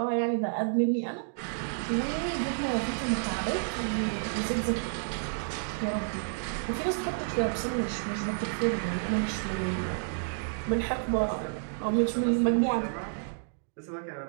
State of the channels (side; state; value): left; silent; digital silence